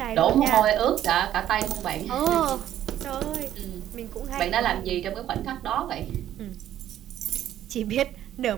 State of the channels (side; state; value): left; quieter; 11.7 dB